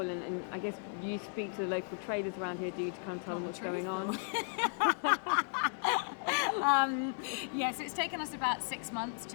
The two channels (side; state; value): right; silent; 54 dB below the other